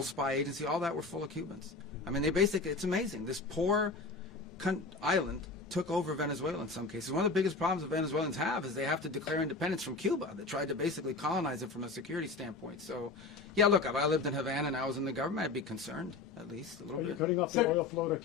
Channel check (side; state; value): right; quieter; 3.8 dB